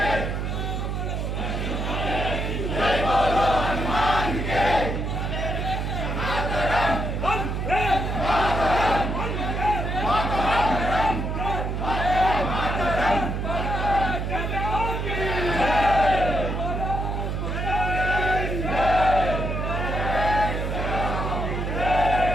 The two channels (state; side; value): noise; right; hum, 2 dB below the sound